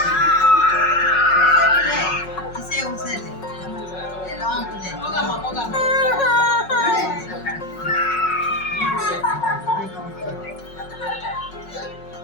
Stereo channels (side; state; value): right; late; 5.4 ms